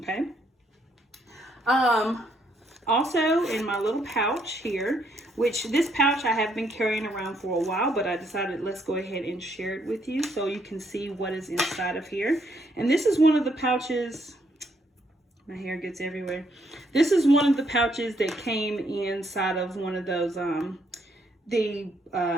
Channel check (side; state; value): both; normal; correlation 0.72